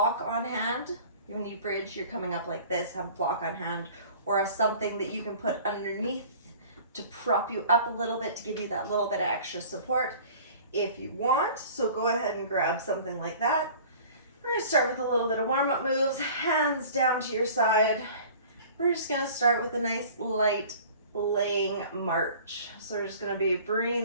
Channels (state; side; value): inverted; both; correlation -0.46